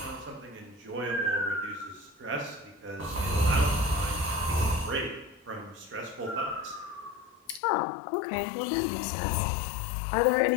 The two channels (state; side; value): drops out; right; at 7.6 s